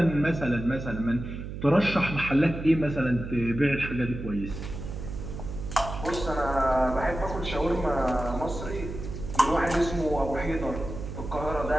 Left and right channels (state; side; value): noise; right; hum, 8 dB below the sound